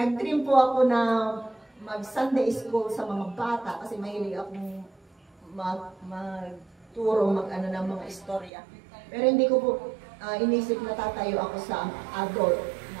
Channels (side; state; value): left; drops out; at 8.5 s